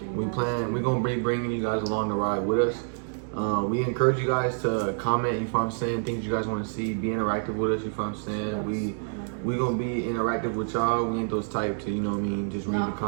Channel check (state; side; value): silent; left; digital silence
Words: you. We're gonna be bringing you guys along the ride with us. We encourage you guys to comment, you know what I'm saying, things you guys want to see, be interactive with us, you know what I'm saying. We gonna be interactive with y'all. We ain't those type to, you know what I mean, just read the